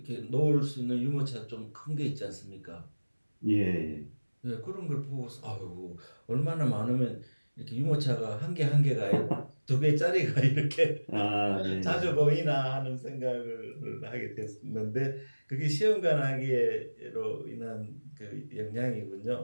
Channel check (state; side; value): inverted; both; correlation -1.00